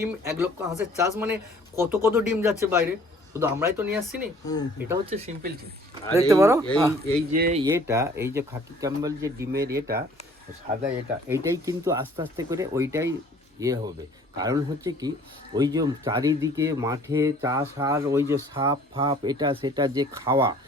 1 লক্ষ হাঁসের চাষ মানে কত কত ডিম যাচ্ছে বাইরে, শুধু আমরাই তো নিয়ে আসছি না। এটা হচ্ছে সিম্পল জিনিস। দেখতে পারো এই যে এই যে খাকি ক্যাম্বেল যে ডিমের সাদা, এইটাই কিন্তু আস্তে আস্তে করে ওইটাই হবে। কারণ হচ্ছে কি, ওই যে চারিদিকে মাঠে চাষ, আর ওই যে সাপ ফাপ এটা সেটা যে খাওয়া,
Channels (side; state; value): both; normal; correlation 0.54